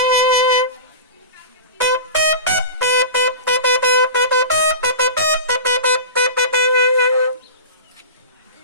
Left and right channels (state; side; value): inverted; both; correlation -0.32